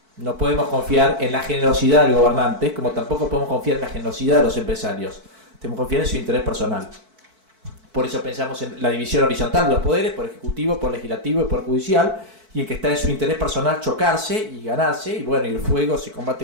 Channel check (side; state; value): left; late; 4.5 ms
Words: No podemos confiar en la generosidad del gobernante, como tampoco podemos confiar en la generosidad de los empresarios. Tenemos que confiar en su interés personal. Por eso pensamos en la división horizontal de los poderes, por ejecutivo, por legislativo y por judicial, y en que está en su interés personal chocarse y ganarse, y bueno, y el fuego se